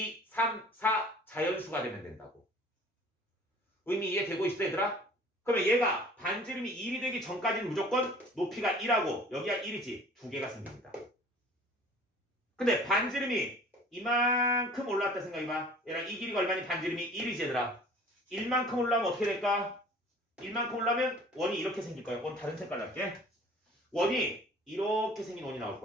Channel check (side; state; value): both; normal; correlation 0.48